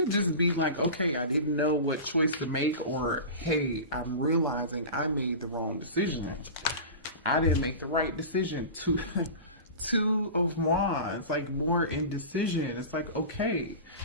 just be like, okay, I didn't know what choice to make, or hey, I'm realizing I made the wrong decision. I didn't make the right decision. Two of Wands, like more indecision. It's like, okay,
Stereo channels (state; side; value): inverted; both; correlation -0.31